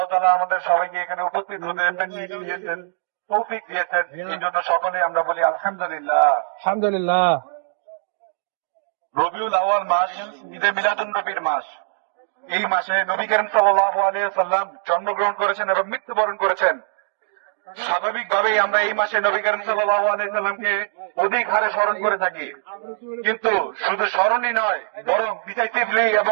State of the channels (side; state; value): left; silent; digital silence